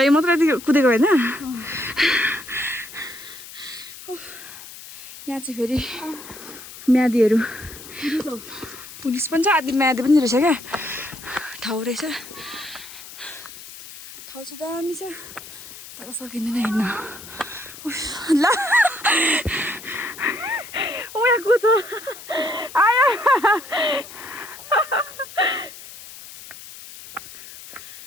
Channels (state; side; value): noise; left; hiss, 15 dB below the sound